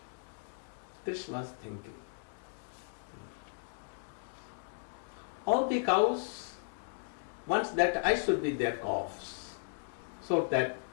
Krishna was thinking. All the cows wants that I should be their calves, so that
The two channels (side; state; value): right; silent; digital silence